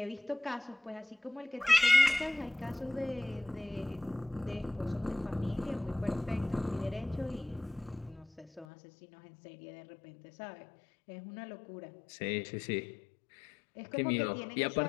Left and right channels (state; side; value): drops out; right; at 8.7 s